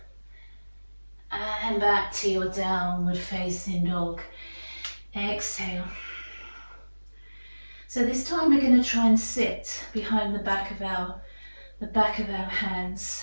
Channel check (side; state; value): both; inverted; correlation -1.00